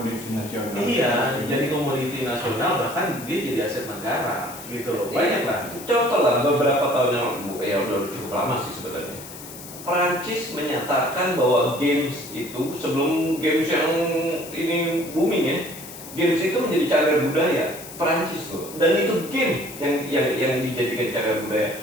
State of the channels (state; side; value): noise; left; hiss, 14 dB below the sound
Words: nasional. Iya, jadi komoditi nasional, bahkan dia jadi aset negara gitu loh. Banyak lah. Contoh lah beberapa tahun yang lalu, ya udah cukup lama sih sebenarnya. Perancis menyatakan bahwa games itu sebelum games yang ini booming ya, games itu menjadi cagar budaya Perancis loh. Dan itu game yang dijadikan cagar budaya.